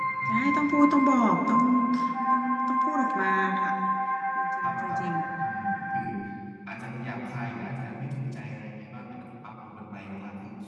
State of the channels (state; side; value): identical; both; correlation 1.00